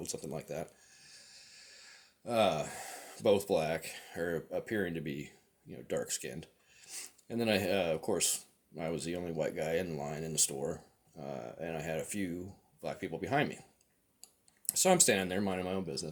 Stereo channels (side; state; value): both; identical; correlation 1.00